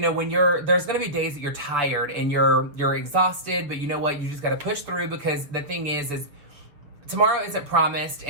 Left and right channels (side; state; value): left; late; 6.6 ms